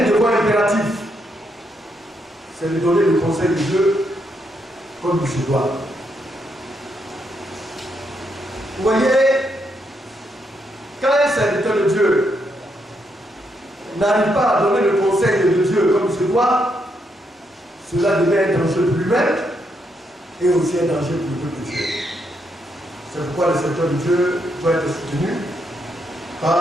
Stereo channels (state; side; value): normal; both; correlation 0.78